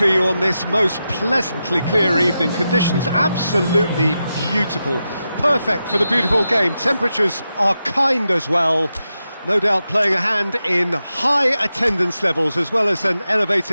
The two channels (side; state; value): both; inverted; correlation -0.89